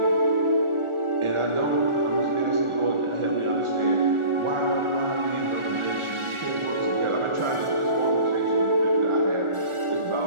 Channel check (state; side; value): late; left; 1.4 ms